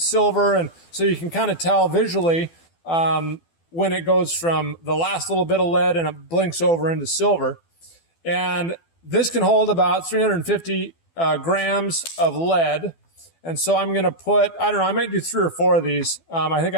And so you can kind of tell visually when it goes from the last little bit of lead and it blinks over into silver. And this can hold about 350 grams of lead. And so I'm going to put, I don't know, I might do 3 or 4 of these. I think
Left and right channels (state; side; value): late; right; 12 ms